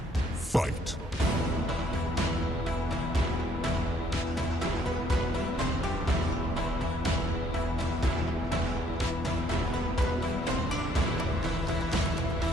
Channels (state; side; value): normal; both; correlation 0.65